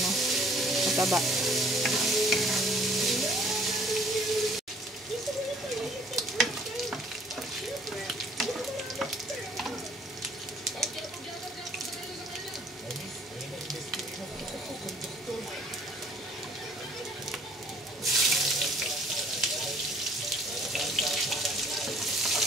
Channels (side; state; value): both; normal; correlation 0.58